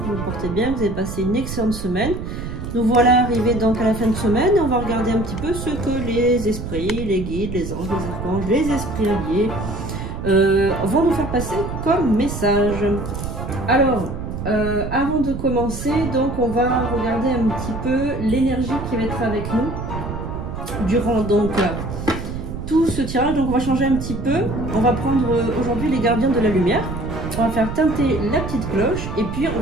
vous vous portez bien, que vous avez passé une excellente semaine. Nous voilà arrivés donc à la fin de semaine et on va regarder un petit peu ce que les esprits, les guides, les anges, les archanges, les esprits alliés vont nous faire passer comme message. Alors, avant de commencer, donc on va regarder un petit peu l'énergie qui va être avec nous durant donc tout ce tirage. Donc on va changer un petit peu. On va prendre aujourd'hui les gardiens de la lumière. On va faire teinter la petite cloche et puis on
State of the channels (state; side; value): noise; right; rumble, 7 dB below the sound